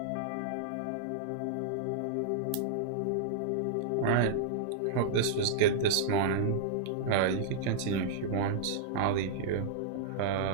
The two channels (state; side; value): different; both; correlation -0.02